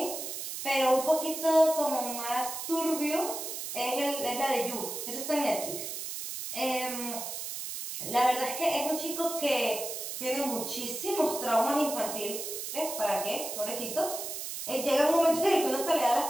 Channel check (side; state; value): right; noise; hiss, 6 dB below the sound